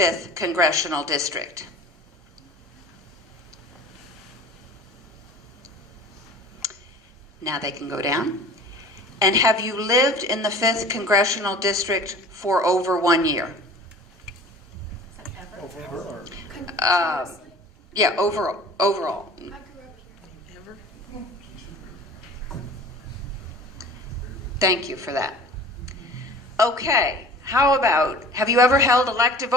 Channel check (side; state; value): both; normal; correlation 0.43